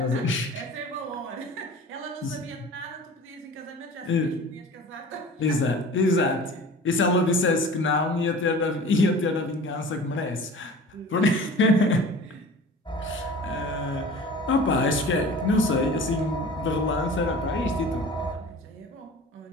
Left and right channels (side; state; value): both; normal; correlation 0.40